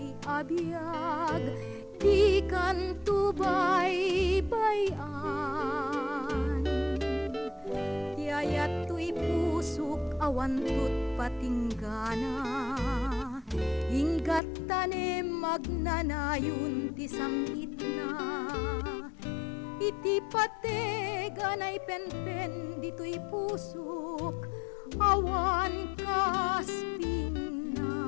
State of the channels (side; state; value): right; drops out; at 14.4 s